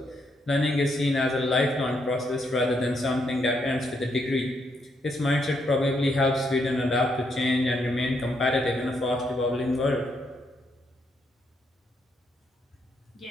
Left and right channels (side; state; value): both; normal; correlation 0.76